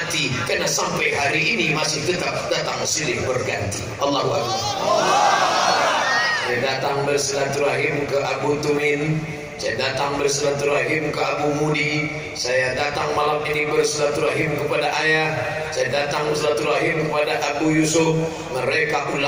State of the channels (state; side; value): identical; both; correlation 1.00